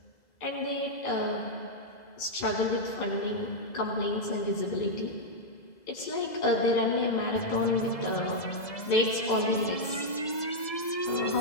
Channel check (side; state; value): right; late; 2.0 ms